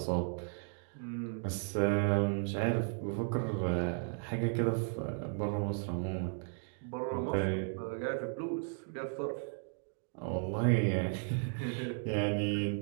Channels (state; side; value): silent; left; 54 dB below the other